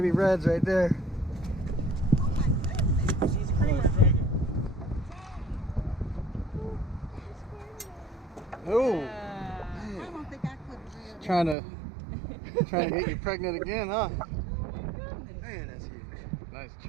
reds right there. Oh, I don't think I could. trying to get you pregnant again, huh? Man, that's huge. Nice,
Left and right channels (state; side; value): drops out; left; at 11.6 s